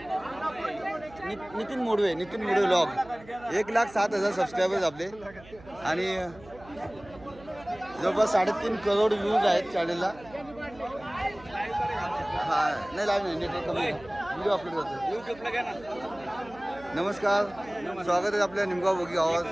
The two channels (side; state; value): right; noise; hum, 21 dB below the sound